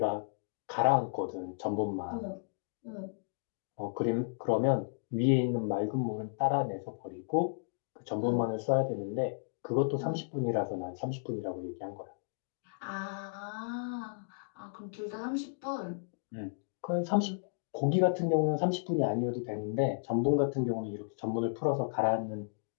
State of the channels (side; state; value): right; silent; digital silence